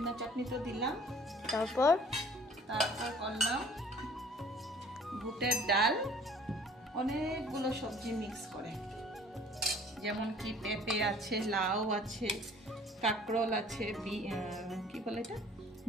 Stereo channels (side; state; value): both; normal; correlation 0.52